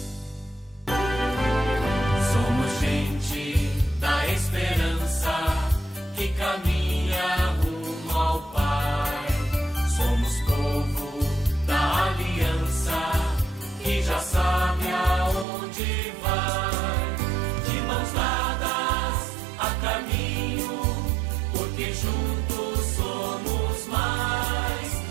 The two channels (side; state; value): left; drops out; at 15.5 s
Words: Somos gente da esperança que caminha rumo ao Pai. Somos povo da aliança que já sabe aonde vai. De mãos dadas a caminho, porque juntos somos mais.